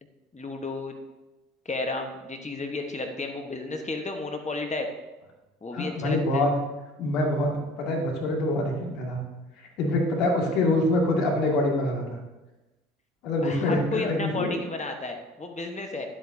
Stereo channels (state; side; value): normal; both; correlation 0.48